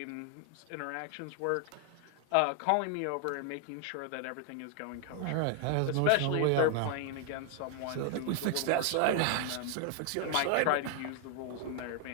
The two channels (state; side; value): different; both; correlation 0.00